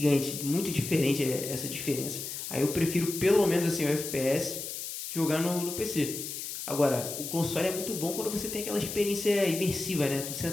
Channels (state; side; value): noise; left; hiss, 7 dB below the sound